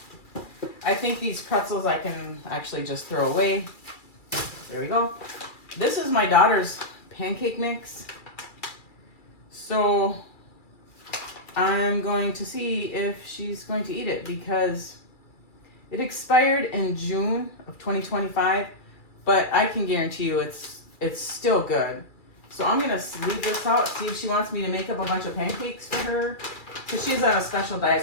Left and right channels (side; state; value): right; late; 2.3 ms